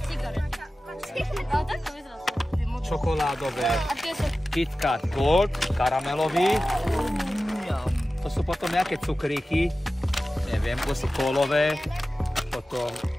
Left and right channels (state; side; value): normal; both; correlation 0.95